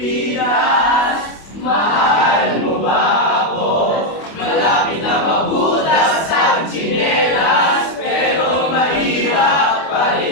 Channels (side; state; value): right; late; 25 ms